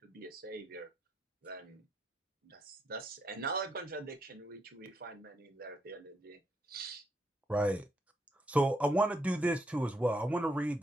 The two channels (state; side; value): normal; both; correlation 0.78